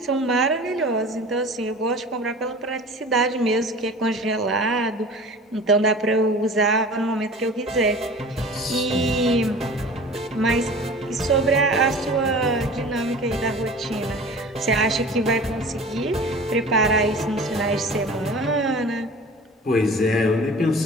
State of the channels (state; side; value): normal; both; correlation 0.40